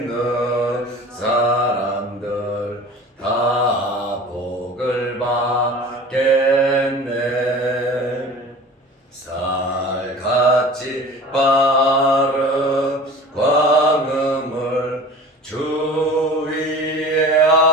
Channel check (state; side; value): normal; both; correlation 0.39